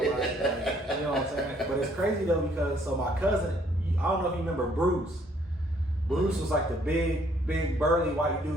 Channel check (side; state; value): both; normal; correlation 0.64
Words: you know what I'm saying. But it's crazy though because my cousin, I don't know if you remember Bruce. Bruce was like the big burly white